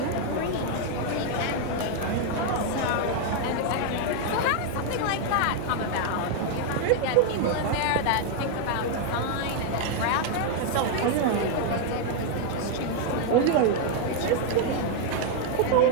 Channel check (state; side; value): different; both; correlation 0.00